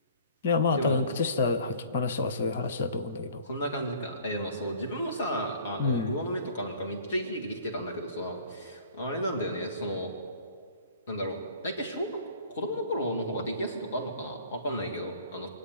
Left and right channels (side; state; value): both; inverted; correlation -0.49